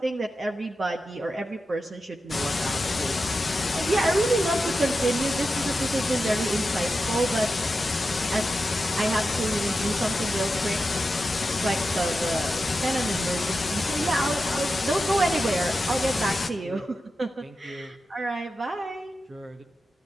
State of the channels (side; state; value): both; normal; correlation 0.90